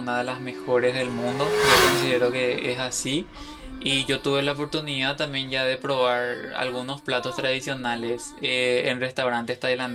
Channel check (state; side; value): identical; both; correlation 1.00